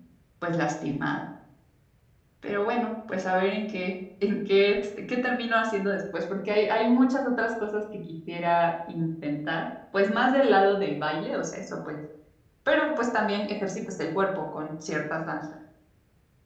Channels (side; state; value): both; identical; correlation 1.00